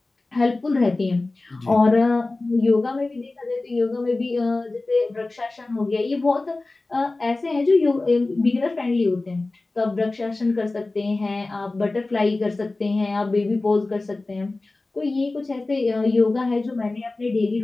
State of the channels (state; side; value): quieter; right; 3.2 dB